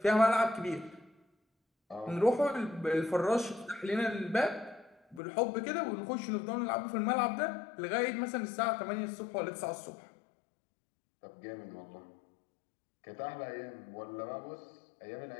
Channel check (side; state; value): right; drops out; at 5.2 s